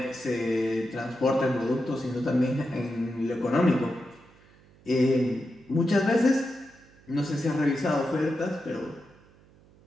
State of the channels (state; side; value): noise; right; hum, 27 dB below the sound